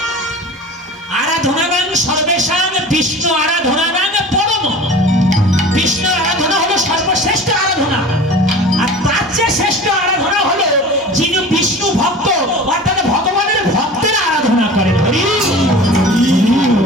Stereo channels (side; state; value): both; normal; correlation 0.39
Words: আরাধনাগাং সর্বেশাং বিষ্ণু আরাধনাগাং পরম। বিষ্ণুর আরাধনা হলো সর্বশ্রেষ্ঠ আরাধনা, আর তার চেয়ে শ্রেষ্ঠ আরাধনা হলো যিনি বিষ্ণু ভক্ত, অর্থাৎ ভগবানের ভক্তের আরাধনা করেন।